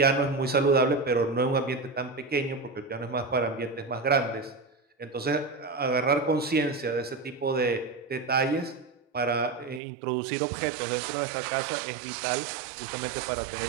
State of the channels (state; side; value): drops out; left; at 9.8 s